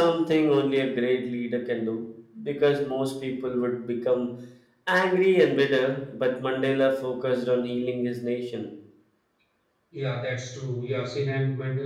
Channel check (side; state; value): both; identical; correlation 1.00